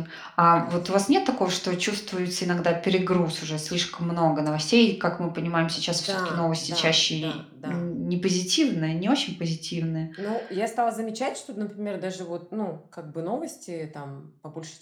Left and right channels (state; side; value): identical; both; correlation 1.00